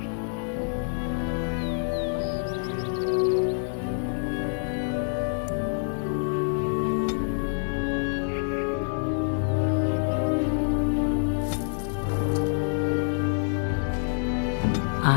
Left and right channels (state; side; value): silent; right; 55 dB below the other